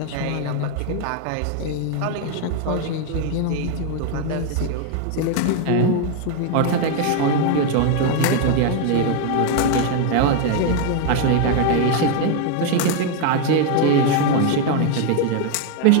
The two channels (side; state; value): both; different; correlation 0.01